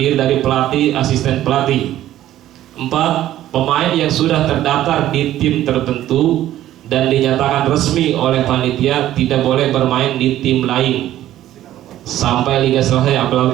dari pelatih, asisten pelatih. 4. Pemain yang sudah terdaftar di tim tertentu dan dinyatakan resmi oleh panitia tidak boleh bermain di tim lain sampai liga selesai.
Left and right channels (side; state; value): left; quieter; 13.2 dB